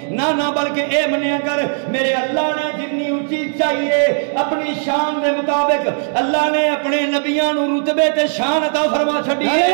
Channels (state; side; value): silent; left; digital silence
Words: نہ بلکہ اے منیا کر میرے اللہ نے جنی اونچی چاہیے اپنی شان دے مطابق اللہ نے اپنے نبیاں نو رتبے تے شان عطا فرما چھڈی ہے.